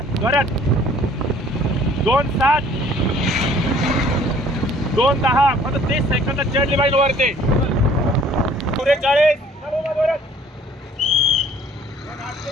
जोरात. 2:07 2:10 फक्त 30 सेकंद चढली पाहिजे वरती. 44 चलो जोरात.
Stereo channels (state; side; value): normal; both; correlation 0.56